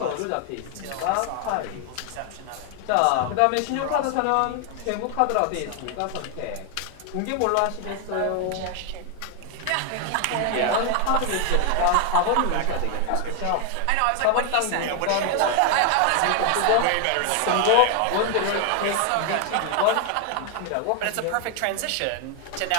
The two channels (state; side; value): different; both; correlation 0.01